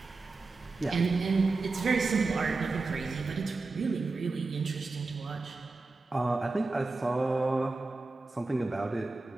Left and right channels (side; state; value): left; quieter; 3.6 dB